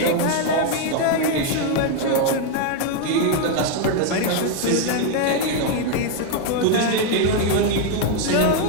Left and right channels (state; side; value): different; both; correlation 0.01